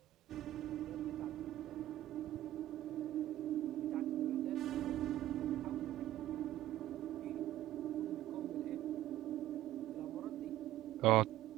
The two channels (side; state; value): left; quieter; 14.0 dB